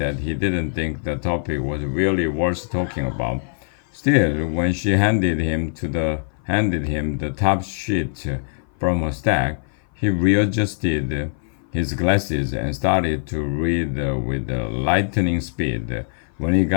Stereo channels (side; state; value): right; silent; 57 dB below the other